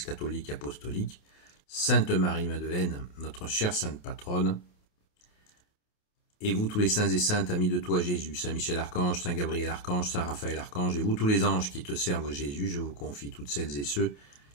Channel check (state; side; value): late; right; 28 ms